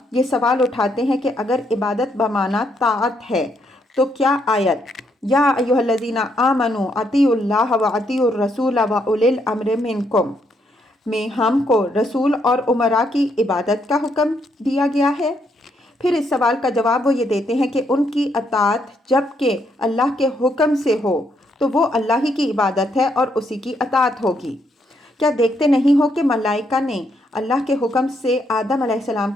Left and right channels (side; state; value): both; normal; correlation 0.75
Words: یہ سوال اٹھاتے ہیں کہ اگر عبادت بمعنی طاعت ہے تو کیا آیت یا ایھا الذین آمنوا اطیعوا اللہ واطیعوا الرسول واولی الامر منکم میں ہم کو رسول اور امراء کی عبادت کا حکم دیا گیا ہے؟ پھر اس سوال کا جواب وہ یہ دیتے ہیں کہ ان کی اطاعت جب کہ اللہ کے حکم سے ہو تو وہ اللہ ہی کی عبادت ہے اور اسی کی اطاعت ہوگی۔ کیا دیکھتے نہیں ہو کہ ملائکہ نے اللہ کے حکم سے آدم علیہ السلام